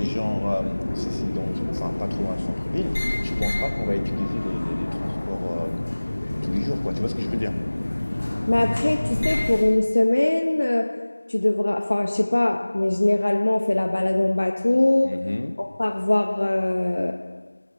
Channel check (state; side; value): inverted; both; correlation -1.00